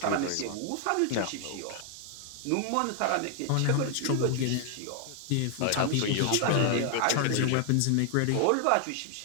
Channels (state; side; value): different; both; correlation 0.00